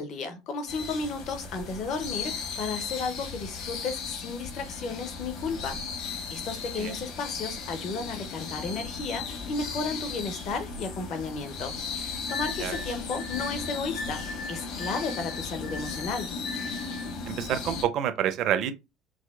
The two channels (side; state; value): both; normal; correlation 0.44